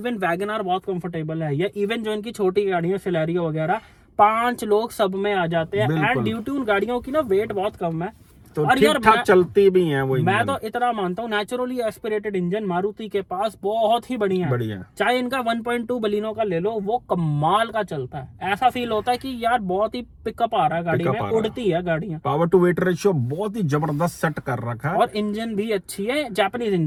वैगनआर बहुत कंफर्टेबल है, या इवन जो इनकी छोटी गाड़ियां सिलेरियो वगैरह, 5 लोग सब में आ जाते हैं। एंड ड्यू टू उन गाड़ियों की ना वेट बहुत कम है तो और ठीक यार ठाक चलती भी हैं वो मैं इंजन। तो इतना मानता हूँ, नेचुरली एस्पिरेटेड इंजन मारुति के पास बहुत ही बढ़िया है। बढ़िया। चाहे इनका 1.2 बलिनो का ले लो, वो कमाल का चलता है। ऐसा फील होता है कि यार बहुत ही पिकअप आ रहा है गाड़ी में, उड़ती है गाड़ियां। पावर टू वेट रेशियो बहुत ही जबरदस्त सेट कर रखा है और इंजन भी अच्छी है, जापानीज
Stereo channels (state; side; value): identical; both; correlation 1.00